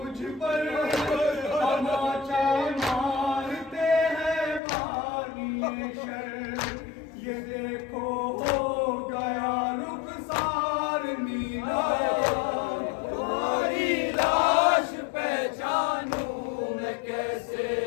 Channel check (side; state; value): right; drops out; at 4.6 s